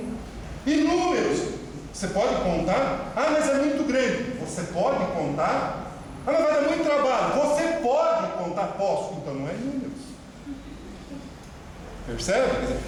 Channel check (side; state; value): both; identical; correlation 1.00